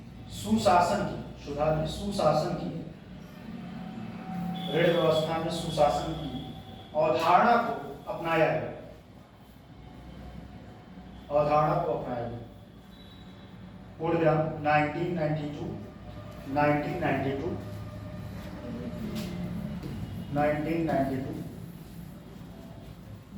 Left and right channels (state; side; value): identical; both; correlation 1.00